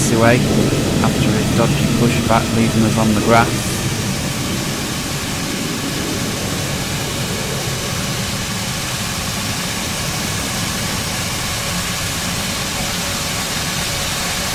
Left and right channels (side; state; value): both; identical; correlation 1.00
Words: after his dodgy pushback leaving us on the grass.